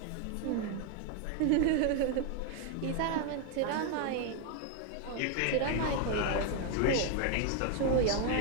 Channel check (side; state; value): both; different; correlation 0.01